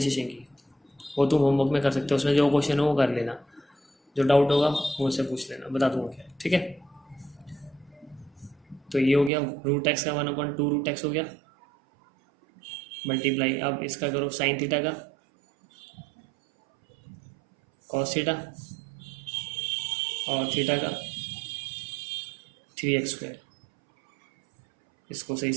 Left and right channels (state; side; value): drops out; left; at 9.3 s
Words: की, वो तुम होमवर्क में कर सकते हो, उसमें जो क्वेश्चन हो वो कर लेना, जो डाउट होगा वो उससे पूछ लेना, बता दूंगा क्या, ठीक है। तो ये हो गया √x का 1/2√x हो गया, मल्टीप्लाई। अब इसका करो साइन थीटा का कॉस थीटा, और थीटा का 3x², इसको सही